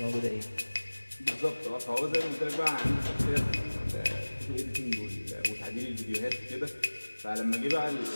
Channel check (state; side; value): inverted; both; correlation -1.00